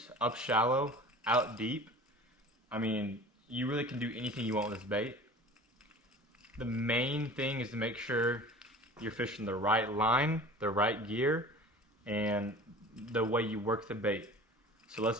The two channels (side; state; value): both; normal; correlation 0.41